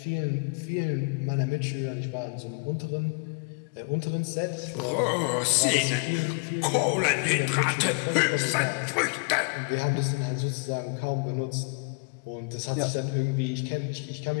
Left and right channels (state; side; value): quieter; right; 33.8 dB